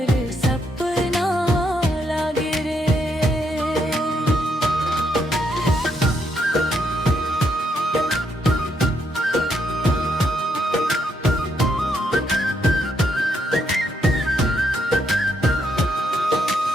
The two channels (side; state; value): both; normal; correlation 0.76